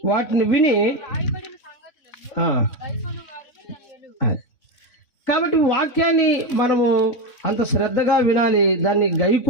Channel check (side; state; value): right; late; 3.6 ms